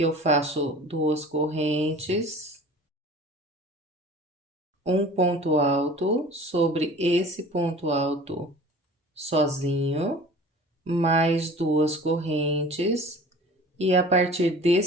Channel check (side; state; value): both; normal; correlation 0.43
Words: eu faço 2 correntes, um ponto alto sobre esse ponto alto sozinho, mais 2 correntes, e a partir